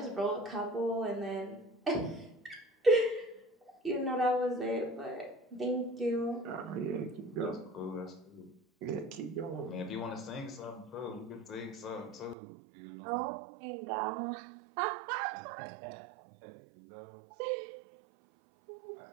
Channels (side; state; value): left; drops out; at 12.4 s